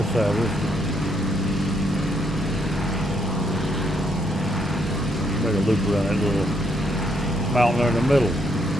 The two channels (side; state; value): both; normal; correlation 0.74